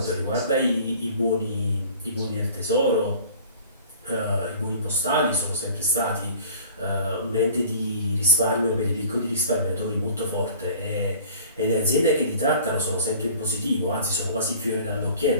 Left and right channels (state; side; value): inverted; both; correlation -0.46